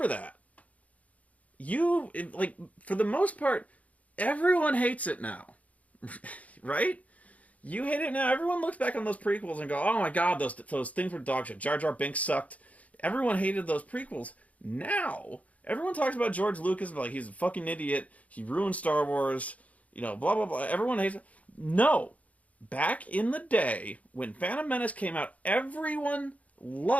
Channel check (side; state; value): right; late; 0.069 ms